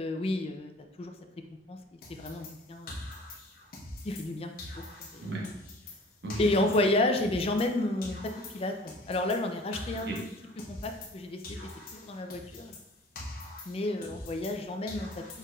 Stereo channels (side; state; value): both; normal; correlation 0.48